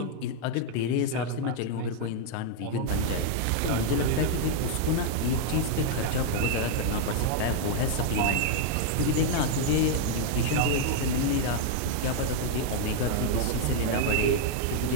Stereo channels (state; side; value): different; both; correlation 0.00